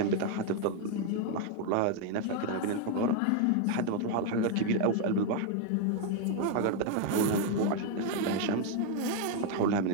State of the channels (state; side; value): different; both; correlation 0.00